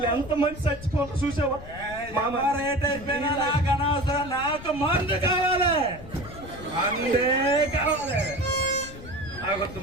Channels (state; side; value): noise; left; rumble, 15 dB below the sound